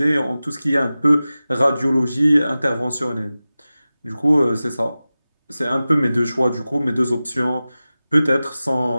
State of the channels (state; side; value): inverted; both; correlation -0.96